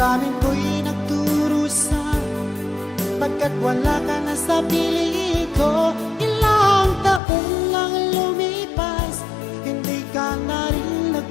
ko'y nagdurusa, pagkat wala ka na sa piling ko. Ilang taon lang lumipas, hindi ka na rin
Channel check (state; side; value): drops out; right; at 7.2 s